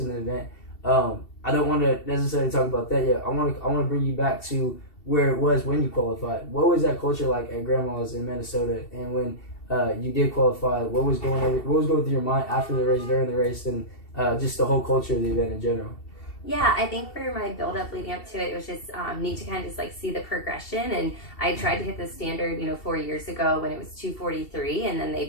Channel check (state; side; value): late; right; 2.7 ms